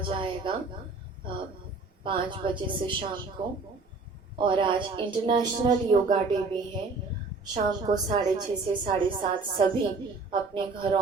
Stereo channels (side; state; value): left; quieter; 4.0 dB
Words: 5 बजे से शाम को, और आज इंटरनेशनल योगा डे भी है। शाम को 6:30 से 7:30 सभी अपने